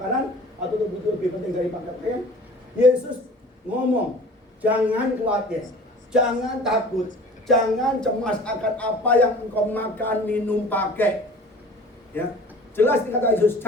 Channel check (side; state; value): both; normal; correlation 0.44